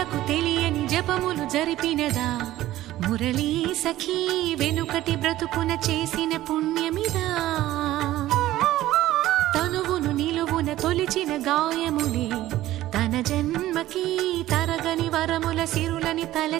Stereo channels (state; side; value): quieter; left; 14.9 dB